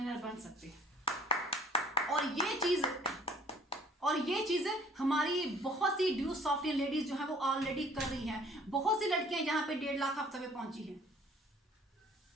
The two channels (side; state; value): both; normal; correlation 0.54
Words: और ये चीज हमारी बहुत सी ड्यू सॉफ्टवेयर लेडीज जो है वो ऑलरेडी कर रही हैं। बहुत सी लड़कियां यहाँ पे 1.5 लाख हफ्ते में पहुंची हैं,